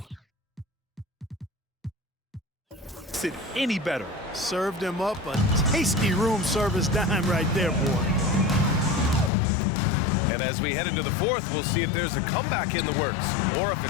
it any better. Served him up a tasty room service dime right there, boy. And as we head into the fourth, we'll see if there's a comeback in the works or if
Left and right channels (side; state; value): right; drops out; at 9.3 s